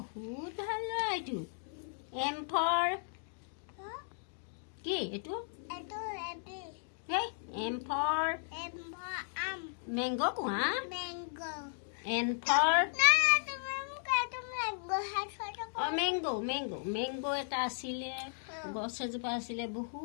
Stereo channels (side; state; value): right; silent; digital silence